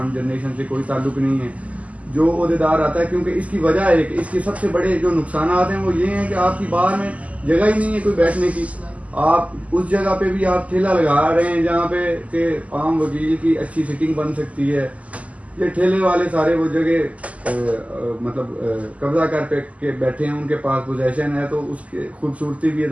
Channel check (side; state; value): left; late; 0.069 ms